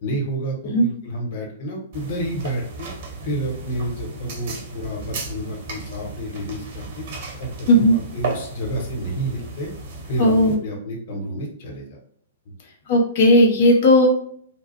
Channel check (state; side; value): inverted; both; correlation -0.35